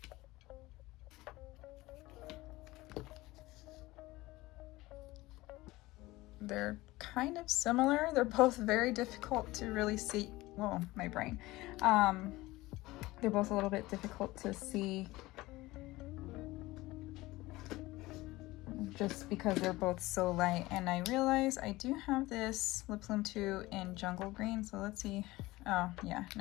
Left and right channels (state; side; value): quieter; right; 19.4 dB